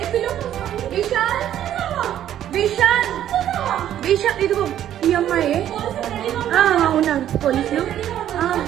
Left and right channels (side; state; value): left; quieter; 11.2 dB